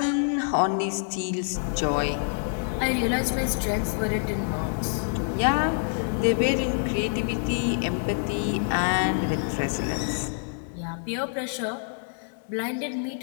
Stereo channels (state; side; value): silent; right; digital silence